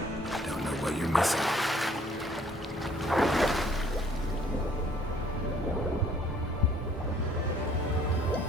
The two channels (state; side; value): normal; both; correlation 0.60